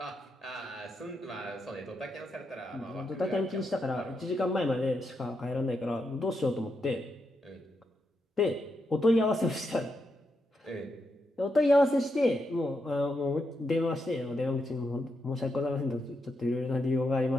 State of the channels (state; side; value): normal; both; correlation 0.83